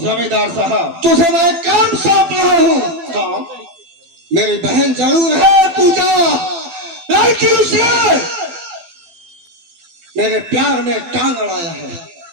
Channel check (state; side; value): late; left; 12 ms